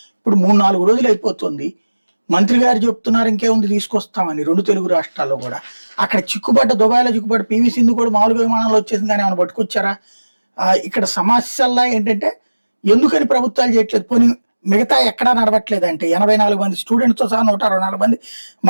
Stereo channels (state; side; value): inverted; both; correlation -1.00